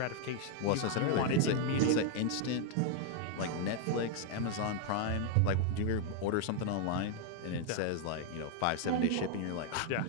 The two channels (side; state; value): both; different; correlation 0.00